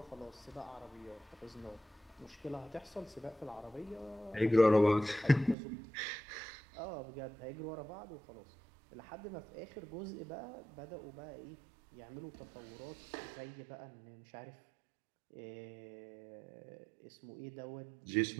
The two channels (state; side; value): drops out; left; at 5.6 s